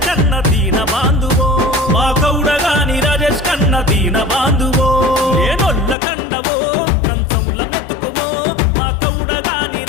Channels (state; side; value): drops out; right; at 6.0 s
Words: కన్న దీన బాంధువో మా కౌడగాని రాజేష్ కన్న దీన బాంధువో ఏనొల్ల కండవో కంచముల మెతుకువో మా కౌడగాని